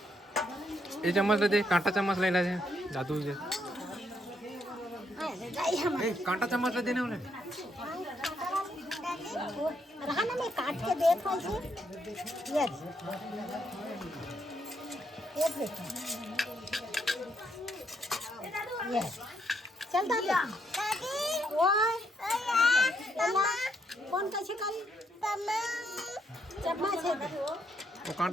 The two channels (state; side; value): normal; both; correlation 0.75